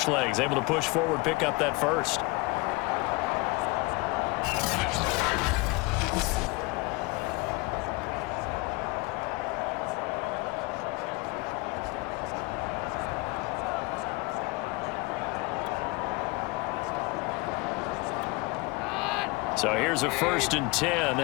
legs? Able to push forward, pick up that 1st. So here's a 1st and 10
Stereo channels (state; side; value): quieter; right; 24.6 dB